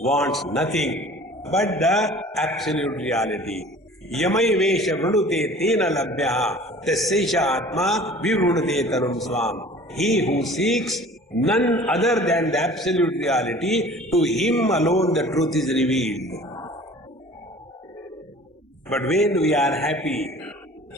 wants nothing but the absolute reality. Yamai vesha vrunute tena labhyaha tasyaisha atma vivrunute tanum swam. He who seeks none other than the absolute reality, to him alone the truth is revealed. But when we are happy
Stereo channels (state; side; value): normal; both; correlation 0.46